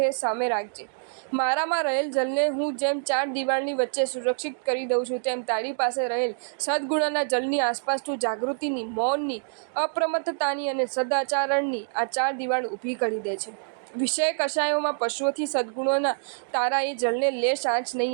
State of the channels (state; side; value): silent; left; digital silence